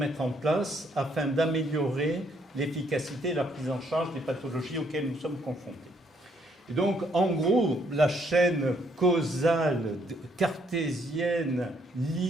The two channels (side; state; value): both; normal; correlation 0.69